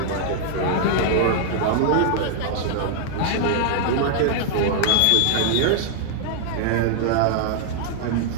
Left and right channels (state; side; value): different; both; correlation -0.01